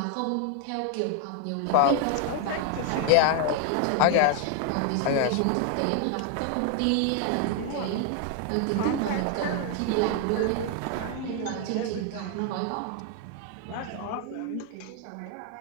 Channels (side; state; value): both; different; correlation 0.01